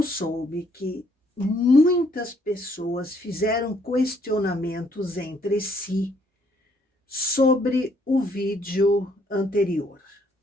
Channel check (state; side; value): normal; both; correlation 0.68